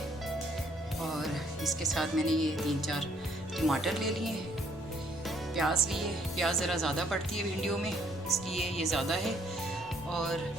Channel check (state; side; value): normal; both; correlation 0.65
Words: और इसके साथ मैंने ये 3-4 टमाटर ले लिए, प्याज लिए। प्याज ज़रा ज़्यादा पड़ती है भिंडियों में, इसलिए ये ज़्यादा है। और